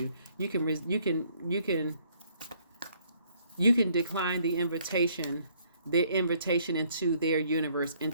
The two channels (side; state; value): both; inverted; correlation -0.65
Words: You can decline the invitation, their invitation into their universe,